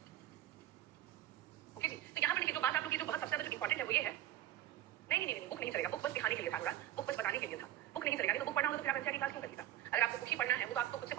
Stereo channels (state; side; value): quieter; left; 13.1 dB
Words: ओके जी, तो यहाँ पर देखिए जो बात आप लोग की जो बहुत सबसे ज्यादा जो इंपॉर्टेंट है वो ये है, नहीं बुक नहीं चलेगा, बुक बस दिखाने के लिए था, थोड़ा बुक बस बताने के लिए था, बुक नहीं चलेगा। नहीं तो बुक पढ़ना होता तो फिर आप एनसीईआरटी क्लास क्यों करती था? अगर आपको बुक ही पढ़ना है वो तो आप तो खुद से